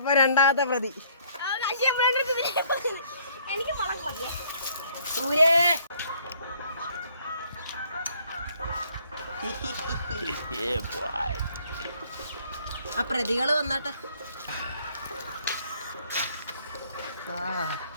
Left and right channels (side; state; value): both; inverted; correlation -0.63